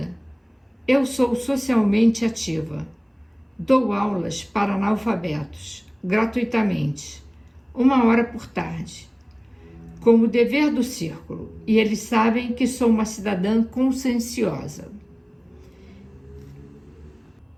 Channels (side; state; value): both; identical; correlation 1.00